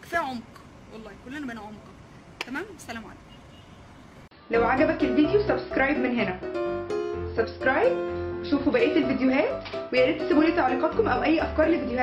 كفايه عمق، والله كلنا بقينا عمق. تمام، سلام عليكم. لو عجبك الفيديو سبسكرايب من هنا، سبسكرايب، شوفوا بقيه الفيديوهات، ويا ريت تسيبوا لي تعليقاتكم او اي افكار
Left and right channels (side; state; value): both; identical; correlation 1.00